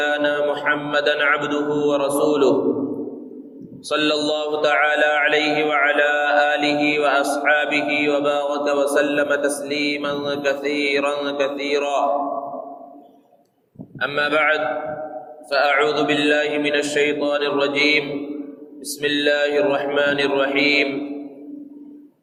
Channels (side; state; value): both; identical; correlation 1.00